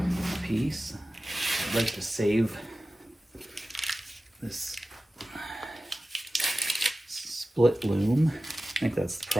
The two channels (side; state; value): both; normal; correlation 0.95